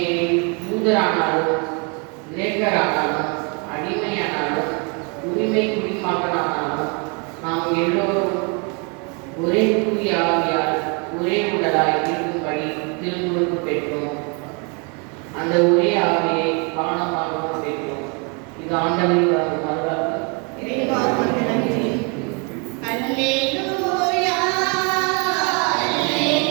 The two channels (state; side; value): quieter; left; 34.2 dB